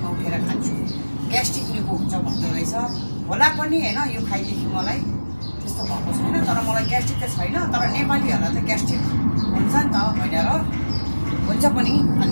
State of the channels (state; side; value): inverted; both; correlation -1.00